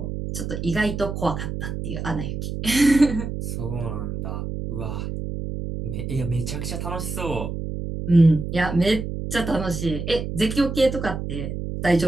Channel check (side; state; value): right; noise; hum, 5 dB below the sound